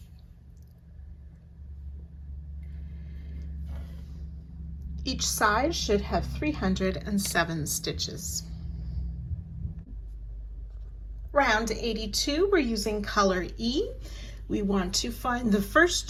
Each side should have 307 stitches. Round 82, we're using color E. We want to find the first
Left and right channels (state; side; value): identical; both; correlation 1.00